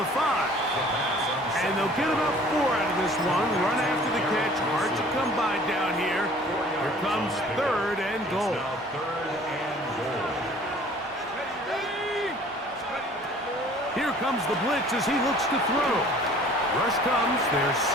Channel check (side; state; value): both; normal; correlation 0.51